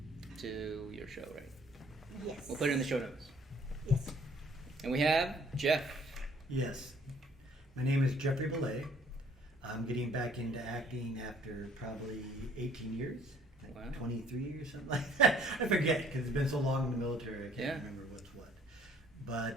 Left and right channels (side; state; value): both; normal; correlation 0.59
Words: to your show, right? Yes. We'll put it in the show notes. Yes. And we have Jeff. Yes. My name is Jeffrey Bele. I'm getting back into acting after probably 18 years. Wow. 23 or something like that. I forget because it's been so long in the military. I can't remember what's what.